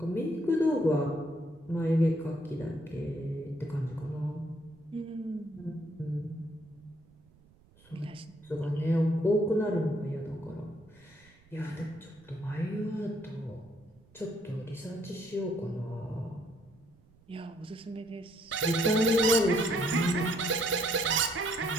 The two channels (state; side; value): noise; right; rumble, 28 dB below the sound